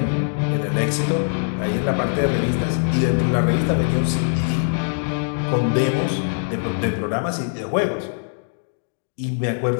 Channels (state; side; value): silent; right; digital silence